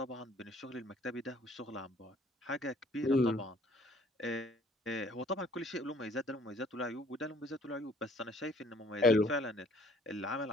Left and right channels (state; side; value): normal; both; correlation 0.58